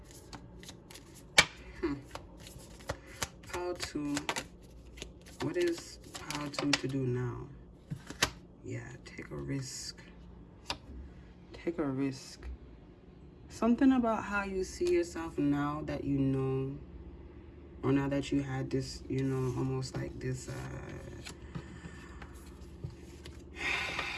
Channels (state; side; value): identical; both; correlation 1.00